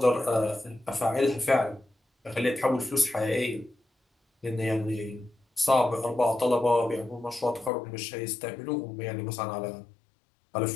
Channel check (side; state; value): right; drops out; at 7.7 s